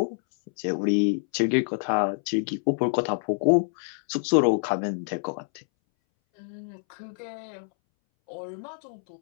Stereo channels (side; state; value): right; silent; 60 dB below the other